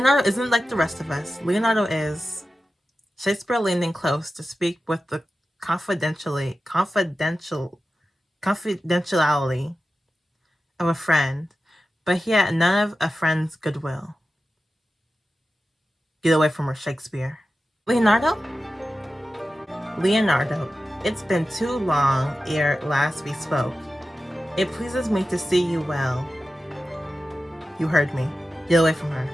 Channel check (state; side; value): normal; both; correlation 0.93